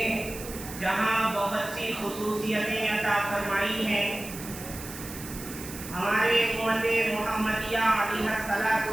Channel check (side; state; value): right; noise; hiss, 12 dB below the sound